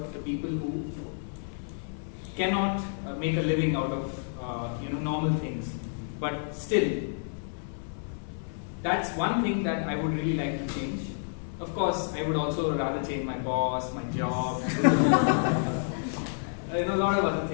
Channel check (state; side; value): silent; right; 58 dB below the other